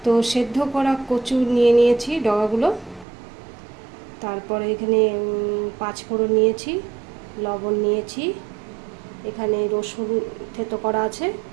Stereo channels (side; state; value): left; drops out; at 3.1 s